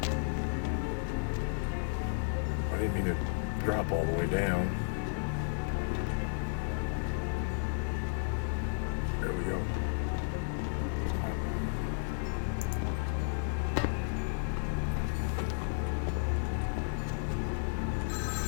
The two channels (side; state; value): right; silent; digital silence